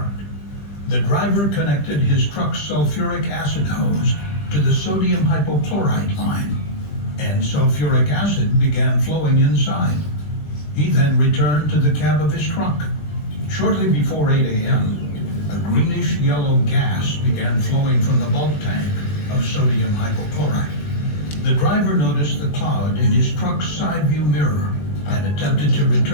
The driver connected his truck's sulfuric acid hose to the sodium hypochlorite line, and sulfuric acid began flowing inside. He then returned to the cab of his truck. Shortly before 8 a.m., a greenish-yellow gas began flowing from the bulk tank of sodium hypochlorite. The driver noticed the cloud in his truck's side view mirror and attempted to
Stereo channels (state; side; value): late; right; 20 ms